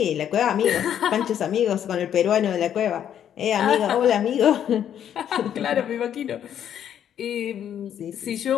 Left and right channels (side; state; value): right; quieter; 9.7 dB